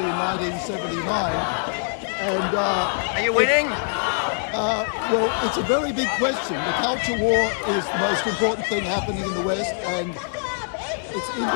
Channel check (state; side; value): silent; right; digital silence